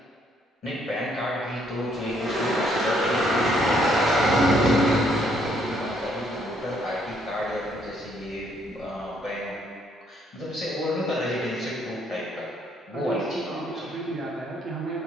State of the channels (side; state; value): both; normal; correlation 0.69